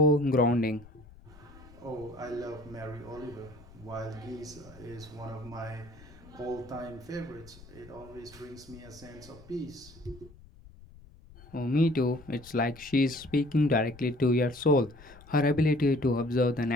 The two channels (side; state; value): left; noise; rumble, 21 dB below the sound